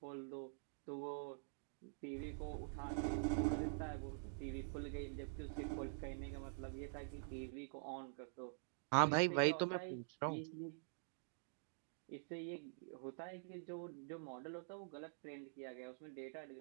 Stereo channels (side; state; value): left; silent; digital silence